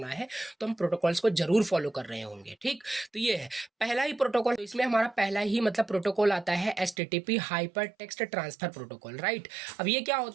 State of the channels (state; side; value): drops out; left; at 7.0 s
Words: है तो हम प्रोटोकॉल्स को जरूर फॉलो कर रहे होंगे। ठीक, तो ये है पहला ही प्रोटोकॉल। तो इसमें हमारा पहला ही मतलब प्रोटोकॉल आता है HTTP hyper text transfer protocol, right. अब ये क्या